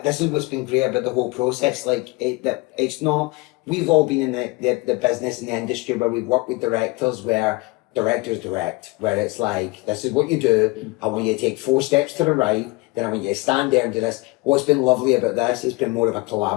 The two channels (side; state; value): right; quieter; 23.4 dB